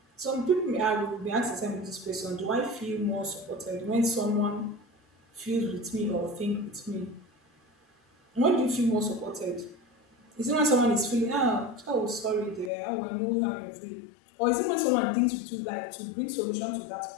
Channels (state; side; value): drops out; right; at 12.7 s